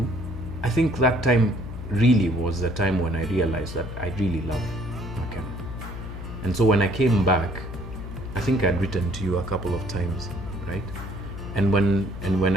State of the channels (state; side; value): noise; left; hum, 9 dB below the sound